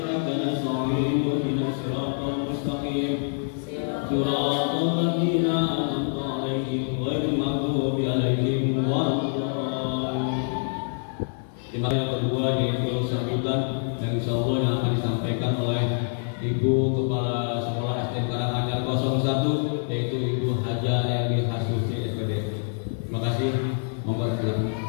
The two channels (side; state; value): right; silent; digital silence